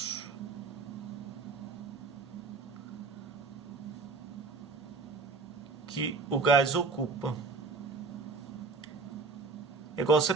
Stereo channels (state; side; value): quieter; left; 4.2 dB